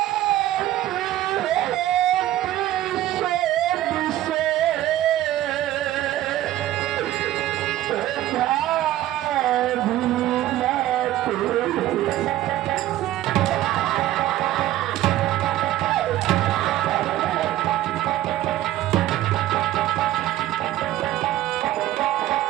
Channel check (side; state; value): left; quieter; 14.2 dB